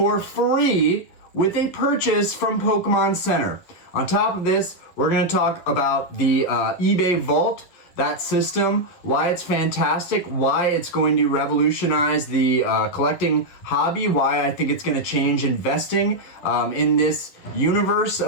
free with a purchase from Pokémon Center. On top of this, we're going to talk about the eBay Vault, that system, why it's fantastic, why it's going to revolutionize the collecting hobby, why I think it's going to change investing in this universe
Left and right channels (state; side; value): late; right; 11 ms